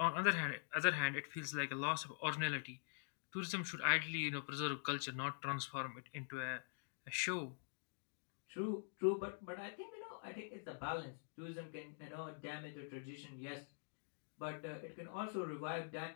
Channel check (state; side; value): silent; right; digital silence